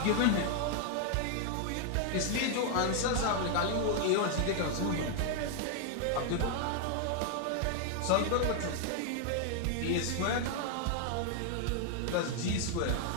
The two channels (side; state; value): both; different; correlation 0.00